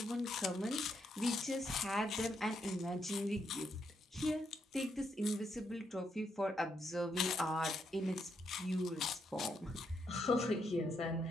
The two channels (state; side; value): normal; both; correlation 0.78